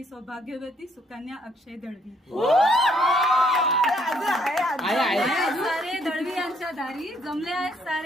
सौभाग्यवती सुकन्या अक्षय दळवी. सारे दळवी यांच्या दारी, जमले आहेत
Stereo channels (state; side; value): normal; both; correlation 0.68